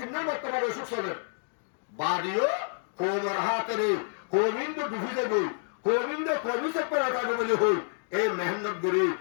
বর্তমানে অসুখ চলে বাড়িও কোমর হাতেরে কোবিন্দ ডুবি দেবে কোবিন্দ কবি চেপে রাখাবে বলে হই এই মেহনত করি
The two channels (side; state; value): right; silent; digital silence